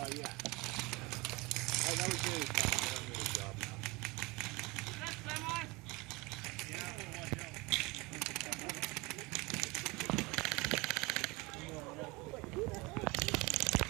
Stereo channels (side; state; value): left; quieter; 24.3 dB